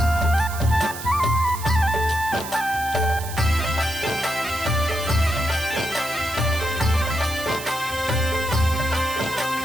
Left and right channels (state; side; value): noise; right; hiss, 11 dB below the sound